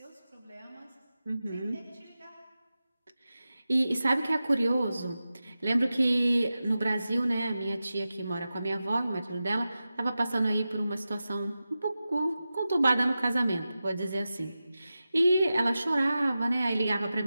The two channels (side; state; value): both; inverted; correlation -0.93